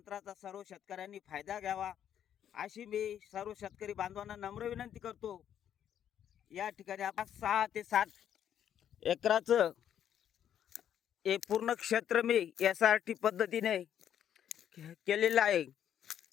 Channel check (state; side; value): quieter; right; 9.8 dB